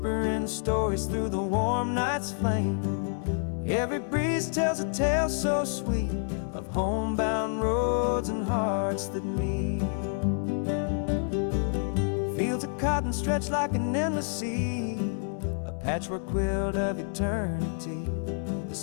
stories through the warm night's flame. Every breeze tells a tale so sweet of homebound roads and hearts that meet. Fields of cotton stretch like an endless sea, a patchwork quilt of eternity. The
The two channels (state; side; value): silent; right; 59 dB below the other